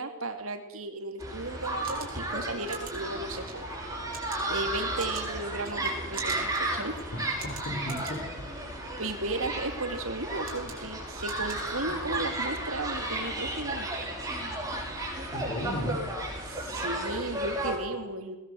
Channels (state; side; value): normal; both; correlation 0.03